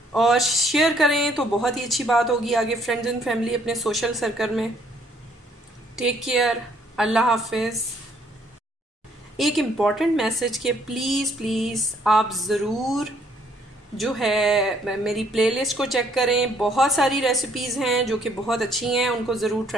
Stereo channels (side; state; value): both; normal; correlation 0.65